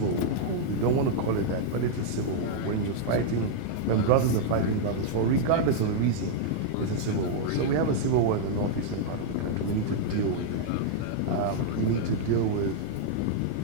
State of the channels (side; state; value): both; different; correlation -0.01